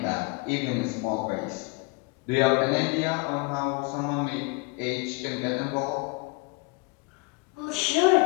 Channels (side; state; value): right; quieter; 27.6 dB